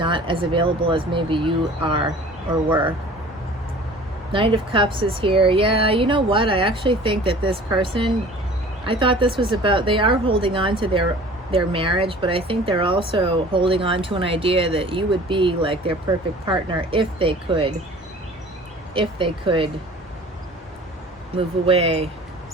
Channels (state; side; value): normal; both; correlation 0.45